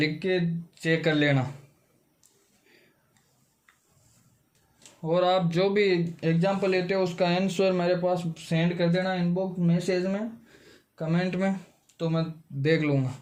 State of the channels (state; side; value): identical; both; correlation 1.00